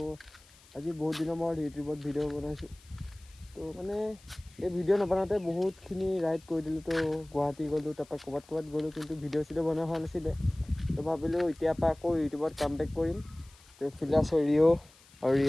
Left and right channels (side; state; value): left; noise; hiss, 26 dB below the sound